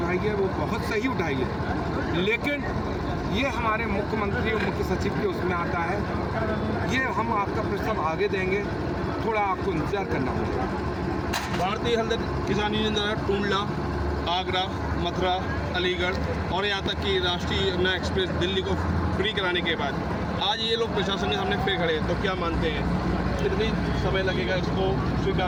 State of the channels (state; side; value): identical; both; correlation 1.00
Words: है वो बहुत सही उठाई है, लेकिन ये हमारे मुख्यमंत्री और मुख्य सचिव के उसमें आता है। ये हम आपका प्रस्ताव आगे देंगे, थोड़ा आपको इंतजार करना होगा। भारतीय हलदर किसान यूनियन द्वारा टूंडला, आगरा, मथुरा, अलीगढ़ और यहाँ तक कि राष्ट्रीय यमुना एक्सप्रेस दिल्ली को फ्री कराने के बाद आज ये लोग प्रशासन के सामने फिर खड़े हैं, तो क्या मानते हैं कितनी समय लगेगा इसको